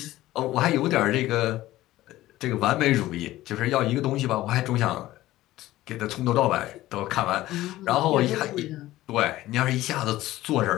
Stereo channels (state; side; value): quieter; right; 16.0 dB